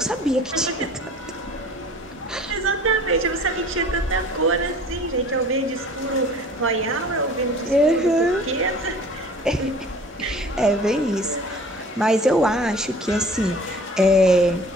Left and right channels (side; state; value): both; normal; correlation 0.47